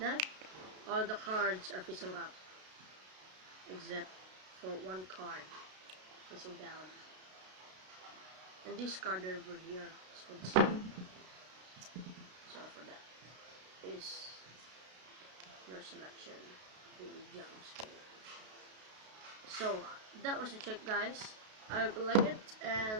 All the cards are facing up. Except for one card facing down. And this card over here is for the same. So for that is your selection, the Jack of Spade. So that was the trick, guys. I hope you like it,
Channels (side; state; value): left; late; 32 ms